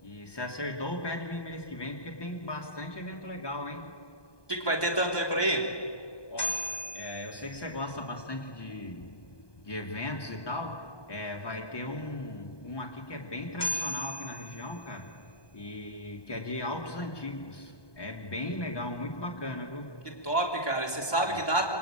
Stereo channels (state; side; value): late; right; 1.2 ms